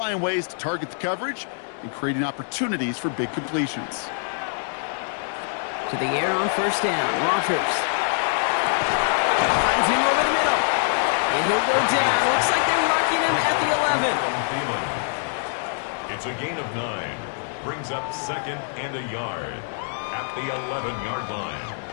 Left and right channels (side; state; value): right; silent; digital silence